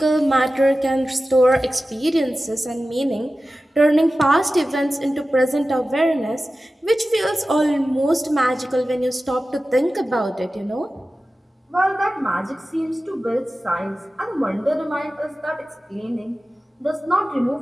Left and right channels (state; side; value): normal; both; correlation 0.95